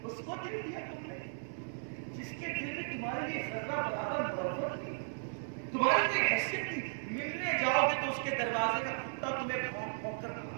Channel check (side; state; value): left; silent; 54 dB below the other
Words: اس کو دل دیا تم نے جس کے دل میں تمہارے لیے ذرہ برابر محبت تھی، تمہاری کوئی حیثیت تھی. ملنے جاؤ گے تو اس کے دروازے کا کتا تمہیں بھونک بھونک کر